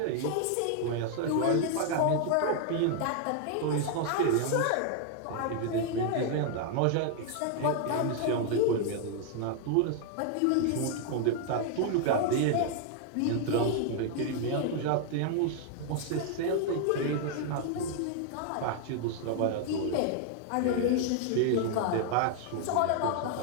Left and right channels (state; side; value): different; both; correlation 0.00